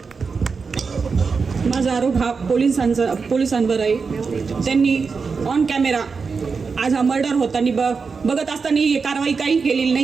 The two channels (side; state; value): left; quieter; 5.1 dB